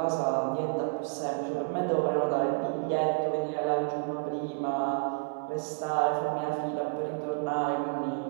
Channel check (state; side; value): silent; left; 58 dB below the other